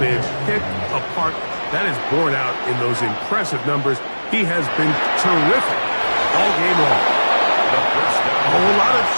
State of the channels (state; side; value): inverted; both; correlation -1.00